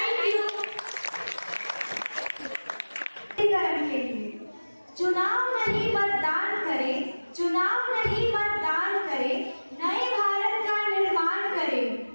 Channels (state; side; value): inverted; both; correlation -1.00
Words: you. करण के लिए चुनाव नहीं मतदान करें, चुनाव नहीं मतदान करें, नए भारत का निर्माण करें।